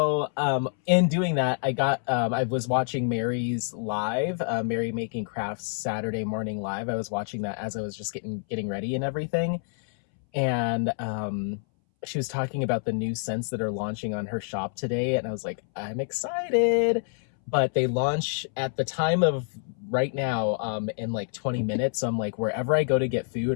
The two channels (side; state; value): right; silent; 60 dB below the other